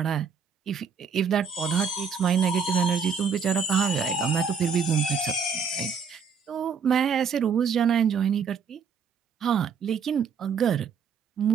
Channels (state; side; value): quieter; left; 6.1 dB